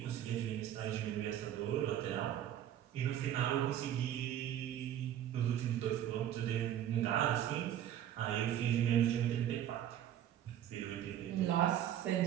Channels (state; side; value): quieter; left; 11.1 dB